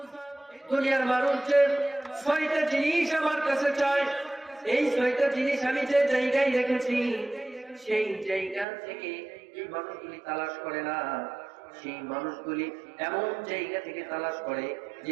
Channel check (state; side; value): drops out; left; at 8.7 s